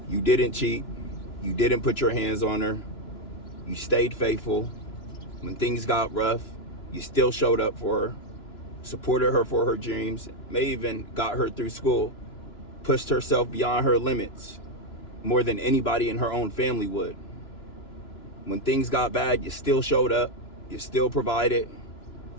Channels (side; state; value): right; late; 2.9 ms